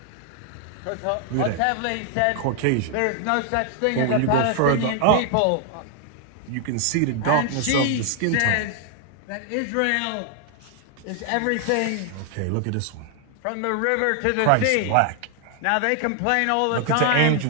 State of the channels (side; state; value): both; different; correlation 0.00